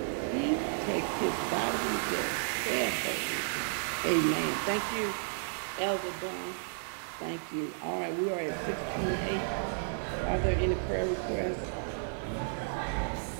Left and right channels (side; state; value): left; silent; 56 dB below the other